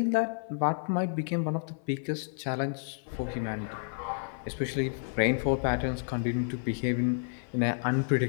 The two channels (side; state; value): right; silent; 58 dB below the other